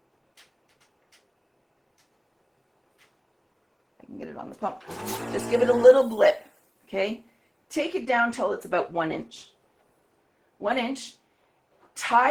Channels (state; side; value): identical; both; correlation 1.00